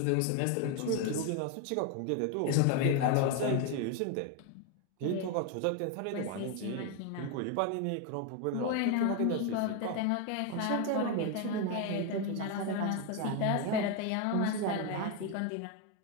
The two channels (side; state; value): both; different; correlation 0.01